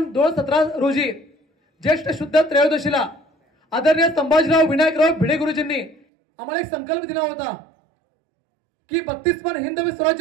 2017 रोजी ज्येष्ठ शुद्ध त्रयोदशीला आदरणीय संभाजीराव विनायकराव भिडे गुरुजींनी आम्हाला एक संकल्प दिला होता की 32 मान हिंदवी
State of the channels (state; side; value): drops out; left; at 6.0 s